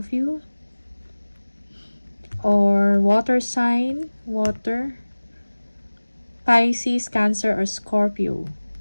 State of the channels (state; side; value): inverted; both; correlation -1.00